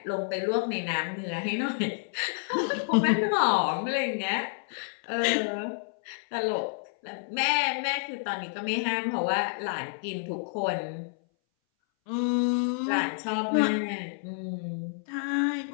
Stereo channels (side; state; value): right; silent; 59 dB below the other